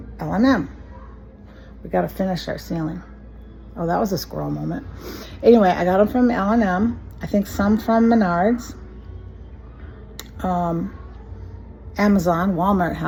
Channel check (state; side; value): identical; both; correlation 1.00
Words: L&M. We got to finish our ceiling. Oh, that was a squirrel moment. Anyway, I got them from L&M. I think some from Menards. Amazon, Walmart